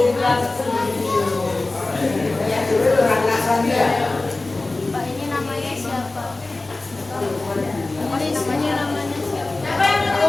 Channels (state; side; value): quieter; right; 3.1 dB